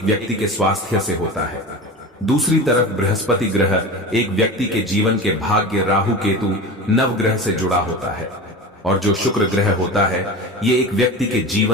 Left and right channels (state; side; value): normal; both; correlation 0.30